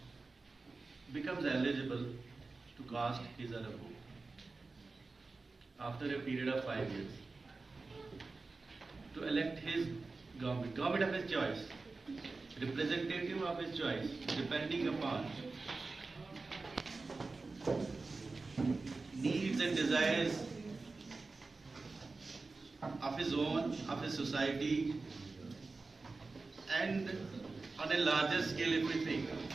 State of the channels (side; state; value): left; quieter; 3.8 dB